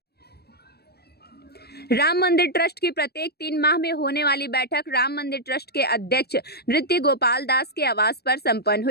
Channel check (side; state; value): right; late; 0.47 ms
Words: राम मंदिर ट्रस्ट की प्रत्येक 3 माह में होने वाली बैठक राम मंदिर ट्रस्ट के अध्यक्ष नृत्य गोपाल दास के आवास पर संपन्न